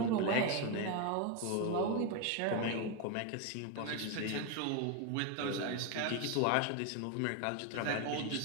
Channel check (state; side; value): different; both; correlation 0.02